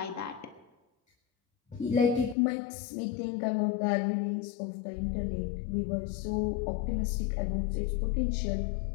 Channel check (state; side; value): drops out; right; at 2.4 s